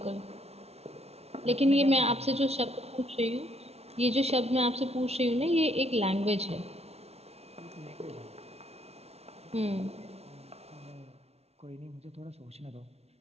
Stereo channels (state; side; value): late; left; 0.30 ms